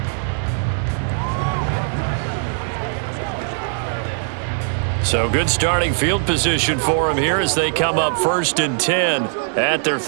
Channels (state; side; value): silent; left; 62 dB below the other